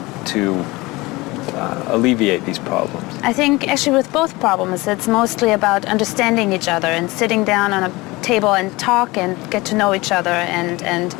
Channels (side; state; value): right; quieter; 22.0 dB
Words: to alleviate these problems? I think actually with both problems, it's mostly about understanding each other and sitting down on a table and talk and get to know each other and